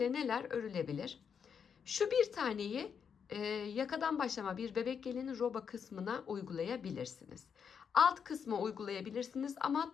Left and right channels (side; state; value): right; quieter; 7.0 dB